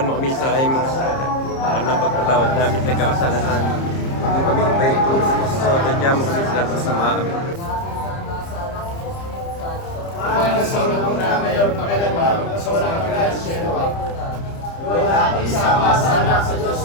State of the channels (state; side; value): late; right; 30 ms